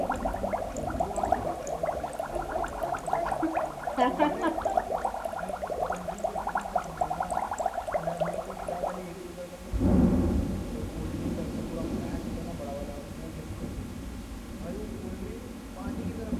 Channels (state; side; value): identical; both; correlation 1.00